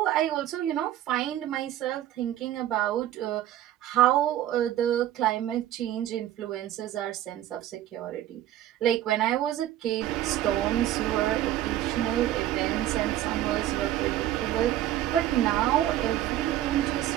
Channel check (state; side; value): quieter; left; 13.0 dB